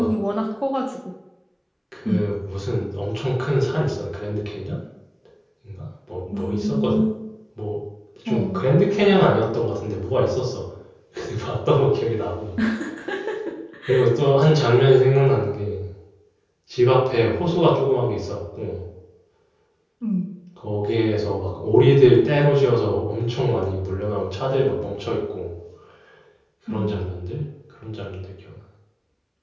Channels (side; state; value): both; identical; correlation 1.00